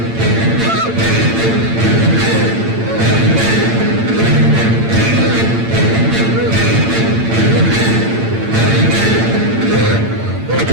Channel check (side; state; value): left; late; 8.8 ms